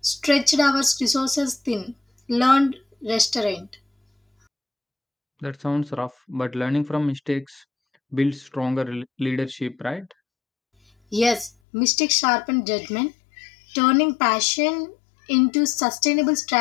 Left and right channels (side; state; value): right; drops out; at 11.5 s